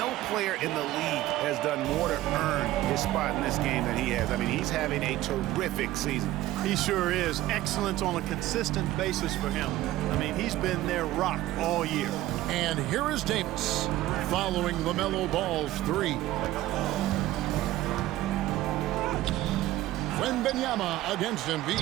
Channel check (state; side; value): quieter; left; 15.5 dB